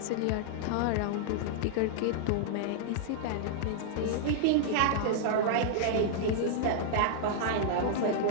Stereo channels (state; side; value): different; both; correlation -0.01